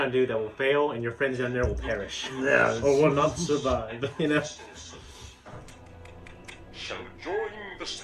to do that will fail, and your friends down there will perish. Yeah. Or will not survive, you know? Shall join the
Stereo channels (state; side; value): identical; both; correlation 1.00